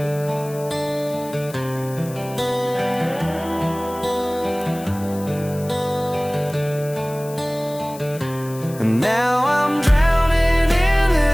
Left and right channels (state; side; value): noise; left; hiss, 18 dB below the sound